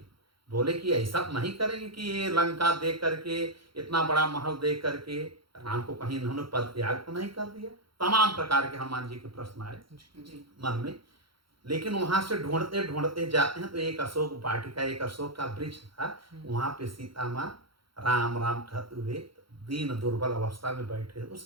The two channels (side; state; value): left; late; 0.74 ms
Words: बोले कि ऐसा नहीं करेंगे कि ये लंका देख करके, इतना बड़ा महल देख करके राम को कहीं इन्होंने पद त्याग तो नहीं कर दिया। तमाम प्रकार के हनुमान जी के प्रश्न आए जी मन में। लेकिन वहां से ढूंढते ढूंढते जाते हैं तो एक अशोक वाटिका, एक अशोक का वृक्ष था। वहां पे सीता माँ राम राम कहते हुए दीन दुर्बल अवस्था में बैठे तो